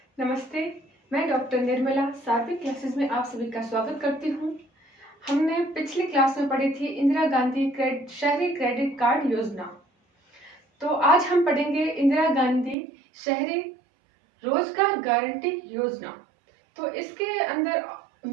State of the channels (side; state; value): left; drops out; at 12.8 s